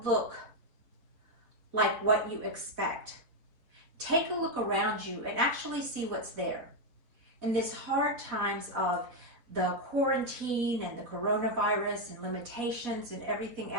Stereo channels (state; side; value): late; left; 4.1 ms